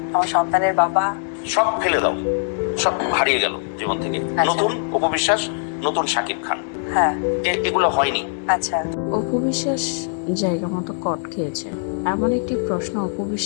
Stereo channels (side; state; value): right; silent; digital silence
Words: আমার সন্তানের বাবা। সব ফেলে দাও, সব হারিয়ে গেল জীবন থেকে। আচ্ছা। নতুন অপবিশ্বাস, নতুন শাকিব খান, হ্যাঁ। এগুলো হয়নি। আচ্ছা। অপু বিশ্বাস জায়গা মতো কট খেয়েছে, এমন একটি প্রশ্ন অপু